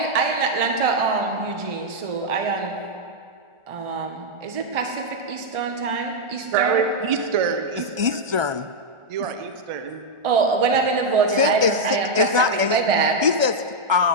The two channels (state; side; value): late; left; 1.3 ms